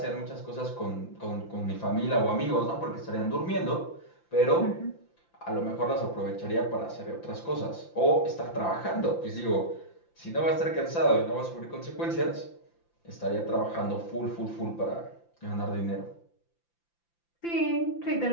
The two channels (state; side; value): late; right; 5.9 ms